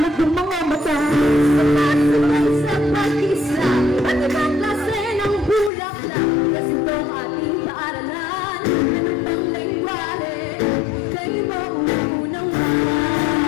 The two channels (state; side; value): drops out; right; at 5.7 s